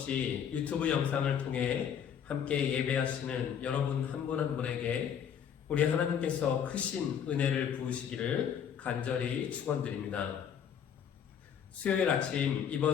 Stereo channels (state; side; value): quieter; right; 8.3 dB